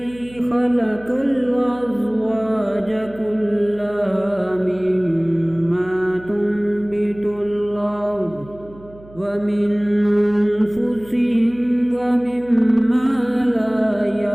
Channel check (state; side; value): noise; right; hum, 21 dB below the sound